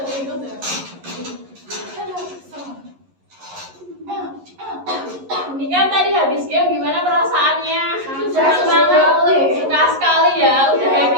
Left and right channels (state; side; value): late; left; 11 ms